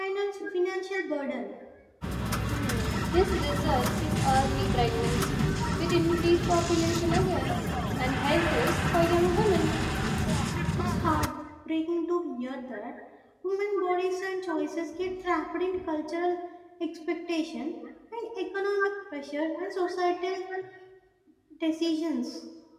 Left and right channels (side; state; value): both; identical; correlation 1.00